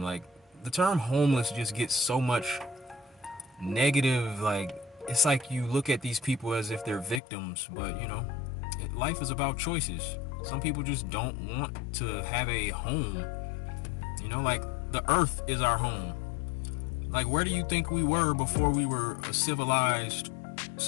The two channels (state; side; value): drops out; right; at 7.2 s